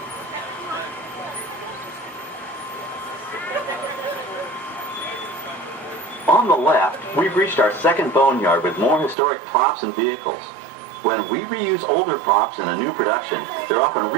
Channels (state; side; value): drops out; left; at 9.2 s